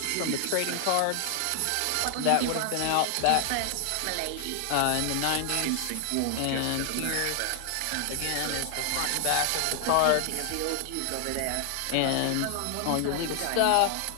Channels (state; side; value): different; both; correlation 0.00